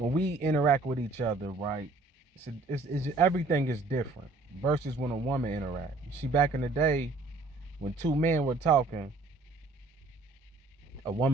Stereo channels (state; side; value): quieter; left; 3.3 dB